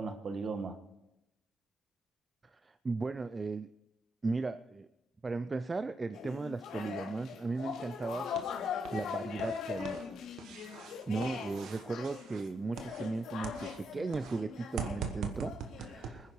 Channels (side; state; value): both; normal; correlation 0.81